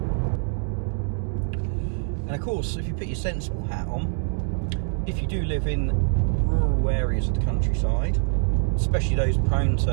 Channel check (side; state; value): left; silent; 55 dB below the other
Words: And of course, if you put your sensible hat on, if you do live in rural areas of the countryside, especially those prone